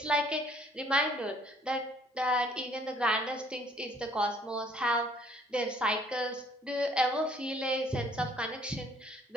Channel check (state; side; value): normal; both; correlation 0.60